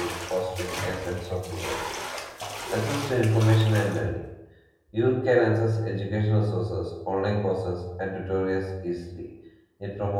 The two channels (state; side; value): identical; both; correlation 1.00